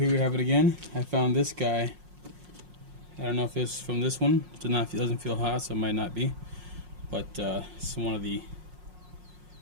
we have it again. I found this guy. I don't know if it's from this one. It doesn't feel hot, so it might not be. But it's one of the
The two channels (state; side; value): late; left; 5.5 ms